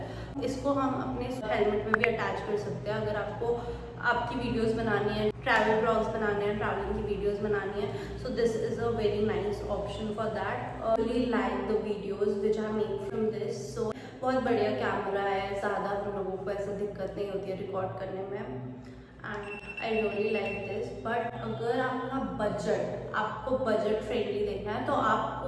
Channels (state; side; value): identical; both; correlation 1.00